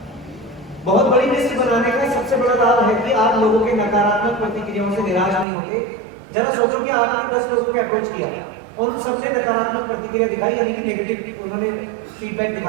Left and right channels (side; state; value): left; drops out; at 5.5 s